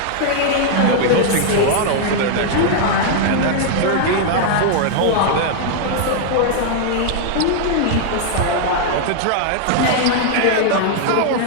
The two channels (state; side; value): different; both; correlation 0.00